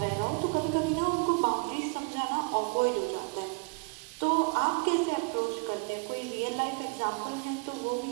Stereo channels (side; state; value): left; quieter; 32.1 dB